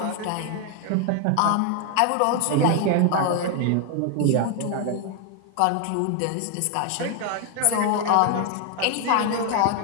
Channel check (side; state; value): both; different; correlation 0.00